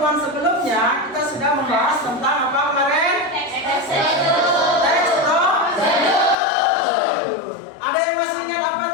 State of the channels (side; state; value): right; drops out; at 6.4 s